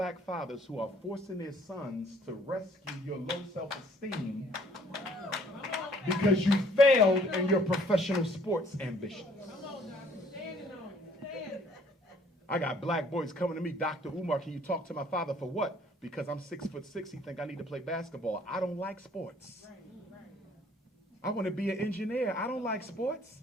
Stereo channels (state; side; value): normal; both; correlation 0.59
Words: fathers who are forcing their sons to rescue your low self-esteem because you failed in your professional sports ambitions. I got black boys coming to me, Dr. Umar, can you talk to my father for what? Because I'm 6'6", he think I need to play basketball. I don't like sports. I want to be an engineer. I don't like sports.